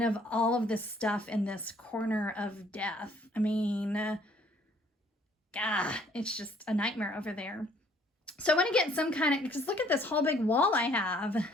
of all of this stuff in this corner of death. I mean, it's just a nightmare over there. So I want to get some kind of, because look at this whole big wall I have.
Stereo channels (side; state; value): both; normal; correlation 0.61